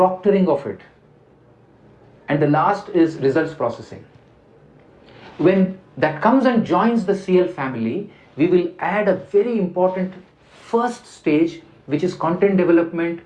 of it. And the last is results processing. When that comes and joins the CL family, we will add a very important first stage, which is content development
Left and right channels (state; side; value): identical; both; correlation 1.00